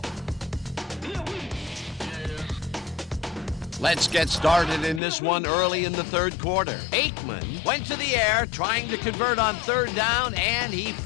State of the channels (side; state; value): right; drops out; at 5.0 s